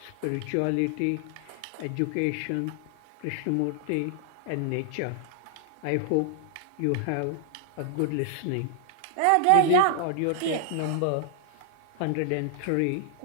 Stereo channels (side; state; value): both; different; correlation 0.00